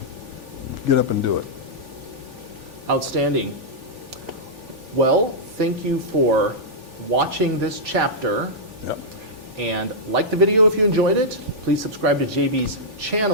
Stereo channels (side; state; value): left; late; 3.4 ms